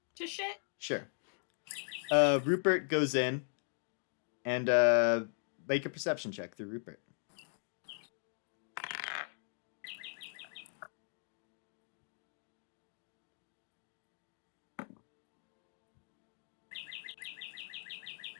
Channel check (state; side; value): silent; right; digital silence